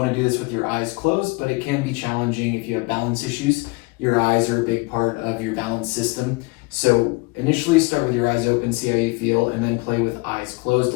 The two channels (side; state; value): right; quieter; 26.4 dB